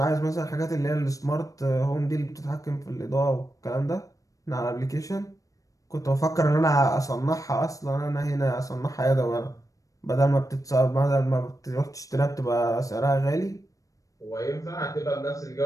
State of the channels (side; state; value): right; late; 0.16 ms